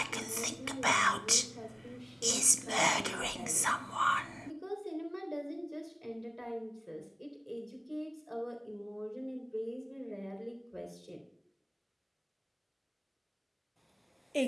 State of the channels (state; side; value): identical; both; correlation 1.00